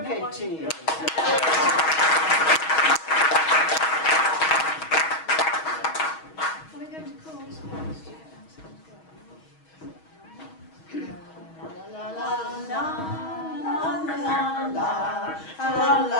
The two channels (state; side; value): late; right; 6.3 ms